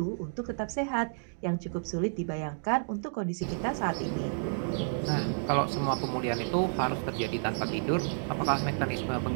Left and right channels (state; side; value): silent; left; digital silence